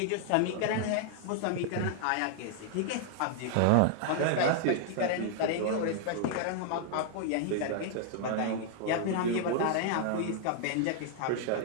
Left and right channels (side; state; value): both; different; correlation 0.00